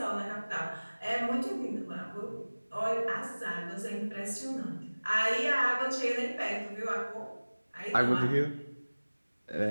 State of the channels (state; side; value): inverted; both; correlation -1.00